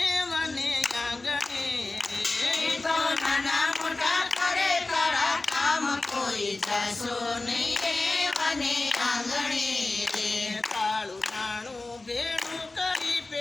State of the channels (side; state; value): right; quieter; 3.2 dB